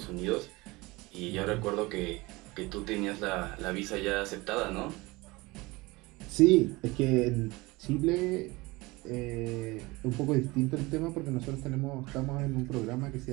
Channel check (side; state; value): left; quieter; 22.6 dB